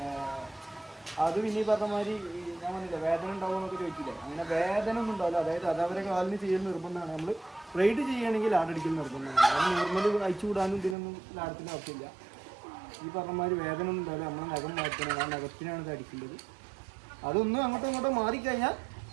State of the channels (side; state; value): left; drops out; at 11.0 s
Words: അത് പിന്നെ ഈ പറഞ്ഞ മാതിരി ഞാൻ പറഞ്ഞില്ല വേദന ഉണ്ടാവുമെന്നൊക്കെ ചോദിച്ചില്ലേ, അങ്ങനെ വേദന ഒന്നും ഉണ്ടാവില്ല. അതായത് അതവരെ കാലിന് ചെയ്യൽ നിർബന്ധമാണ്. നമ്മൾ റൈഡ് ചെയ്യുകയാണെങ്കിൽ ലാടടിക്കൽ നിർബന്ധമാണ്. അത് നോർമൽ അയച്ചു വിടാനും ഇതിനൊന്നും ലാടത്തിൻ്റെ ആവശ്യമില്ല. ഈ പറഞ്ഞ മാതിരി വേദന ഒന്നും ഉണ്ടാവില്ല. നമ്മൾ നഖം മാറ്റണം, ആ നഖത്തിനാണ് ഇത് അടിക്കേണ്ടത്. അതൊന്നും അങ്ങോട്ടും ഇങ്ങോട്ടും മാറിക്കഴിഞ്ഞാൽ